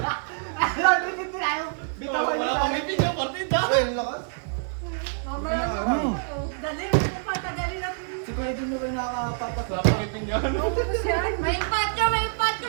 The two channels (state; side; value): silent; left; digital silence